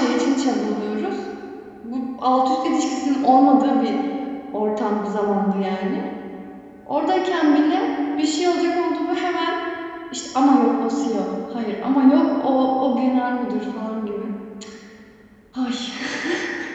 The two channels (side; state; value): both; identical; correlation 1.00